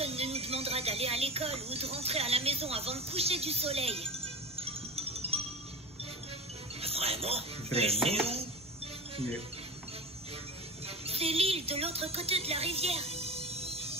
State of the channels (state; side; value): normal; both; correlation 0.30